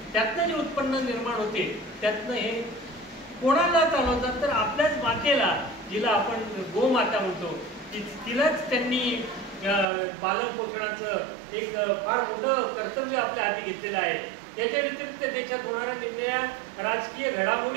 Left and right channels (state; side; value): drops out; left; at 9.9 s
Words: त्यातनं जे उत्पन्न निर्माण होते त्यातनं हे कोणाला चालवतात तर आपल्याच मातेला, जिला आपण गोमाता म्हणतो, तिलाच त्यांनी पालन पोषणाचं एक फार मोठं कर्तव्य आपल्या हाती घेतलेलं आहे. याच्या व्यतिरिक्त देशात होणाऱ्या निर्णया राजकीय